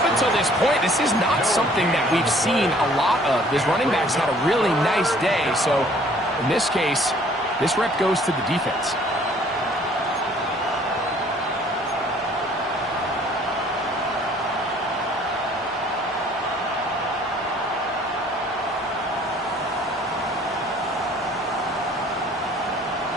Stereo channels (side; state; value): both; normal; correlation 0.57